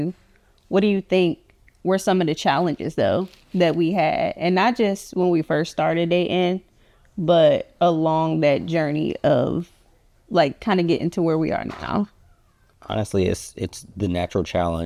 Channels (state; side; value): identical; both; correlation 1.00